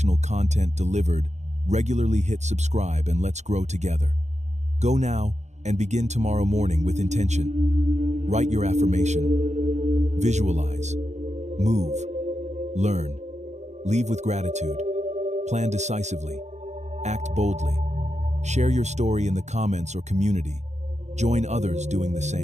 content delivered, regularly hit subscribe and let's grow together. Go now and begin tomorrow morning with intention. Write your affirmation. Visualize. Move. Learn. Leave with gratitude. Plan decisively. Act boldly. Share your story in the comments or community. Join others doing the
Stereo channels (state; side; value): late; left; 0.33 ms